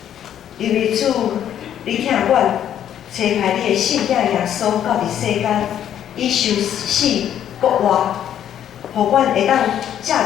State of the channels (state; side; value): quieter; right; 10.2 dB